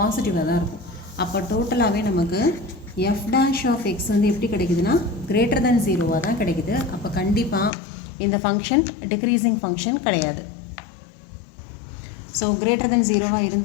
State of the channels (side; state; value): right; drops out; at 7.7 s